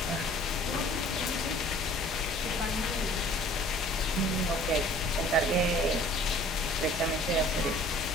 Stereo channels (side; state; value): both; normal; correlation 0.51